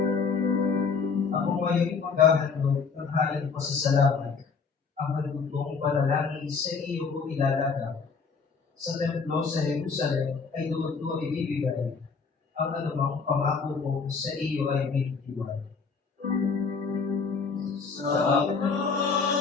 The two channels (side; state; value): right; quieter; 5.2 dB